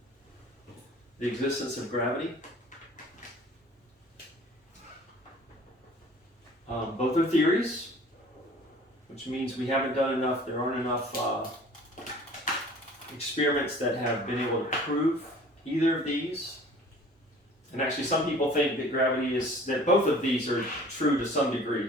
the existence of gravity. Both are theories, which means we haven't done enough, there aren't enough experiments that have been able to prove either of these. And actually some people think that gravity is, that both of these are true to some degree,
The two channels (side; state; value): both; normal; correlation 0.48